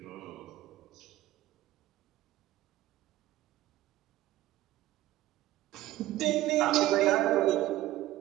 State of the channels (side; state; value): left; quieter; 15.3 dB